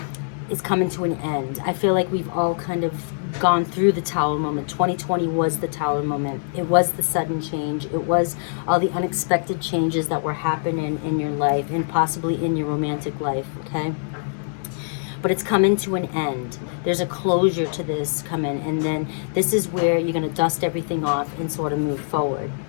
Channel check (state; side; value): silent; right; 62 dB below the other